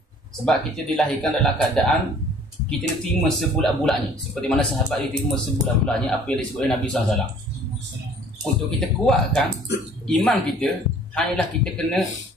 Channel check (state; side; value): normal; both; correlation 0.53